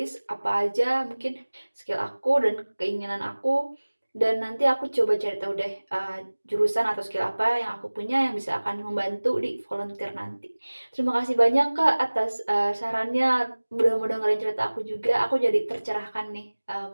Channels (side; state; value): both; inverted; correlation -1.00